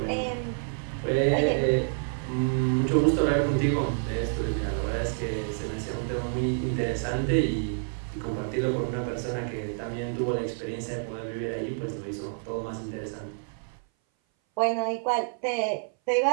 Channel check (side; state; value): left; silent; 57 dB below the other